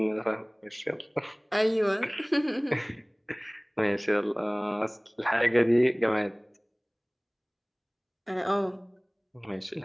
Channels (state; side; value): identical; both; correlation 1.00